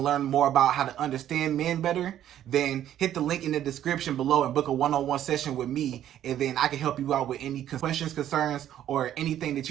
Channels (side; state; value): left; quieter; 11.4 dB